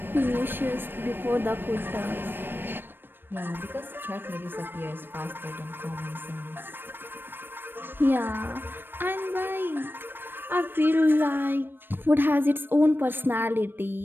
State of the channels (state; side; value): late; left; 0.096 ms